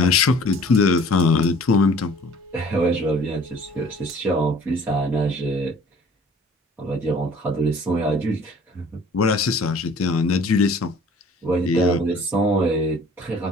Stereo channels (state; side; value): normal; both; correlation 0.51